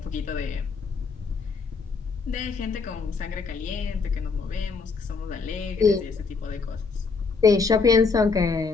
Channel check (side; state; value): right; quieter; 4.7 dB